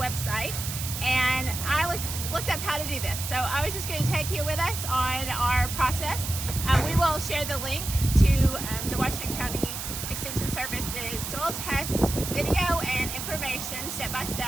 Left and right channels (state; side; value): noise; right; hiss, 6 dB below the sound